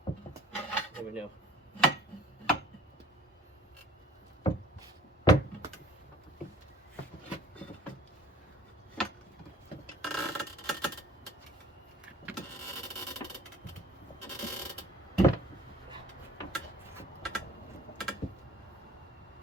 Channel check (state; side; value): normal; both; correlation 0.51